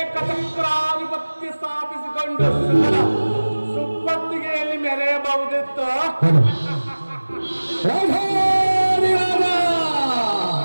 ಸ್ಥಾಪಿಸಿಕೊಂಡು ಸುಪ್ಪತ್ತಿಗೆಯಲ್ಲಿ ಮೆರೆಯಬಹುದಿತ್ತು.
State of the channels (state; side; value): inverted; both; correlation -1.00